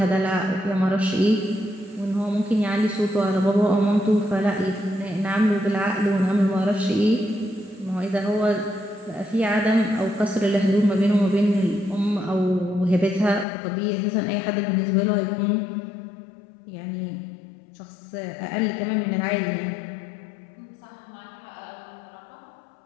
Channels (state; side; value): drops out; right; at 13.5 s